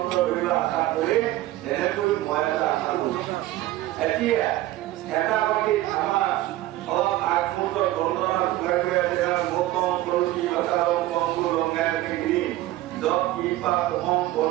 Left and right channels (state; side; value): quieter; left; 15.8 dB